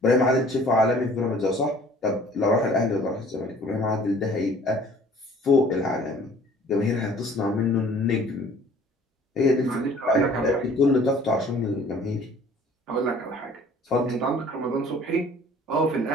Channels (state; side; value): normal; both; correlation 0.52